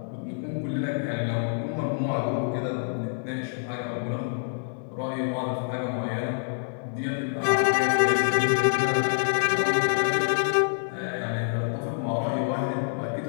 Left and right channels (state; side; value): silent; right; digital silence